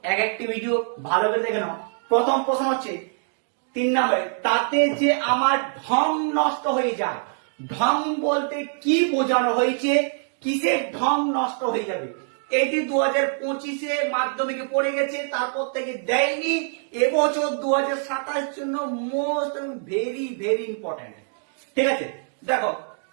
একটি ভিডিও ভালো করে দেখে নাও। প্রথম প্রশ্ন হচ্ছে 3 নম্বরে, তাতে যে আমার ঢং নষ্ট হয়ে যায়। ঢং বলতে কি বোঝানো হয়েছে, কিসের ঢং নষ্ট হয়ে যাবে? এটি 2025-এ মাধ্যমিকে পড়ে গেছে, তারপর থেকে দেয়নি। এবছর 2027 জন্য মোস্ট ভেরি ভেরি ইম্পর্টেন্ট। ঠিক আছে, দেখো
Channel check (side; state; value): left; silent; digital silence